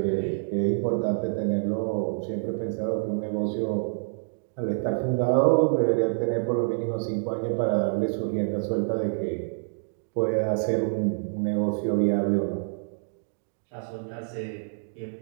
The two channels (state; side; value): silent; left; digital silence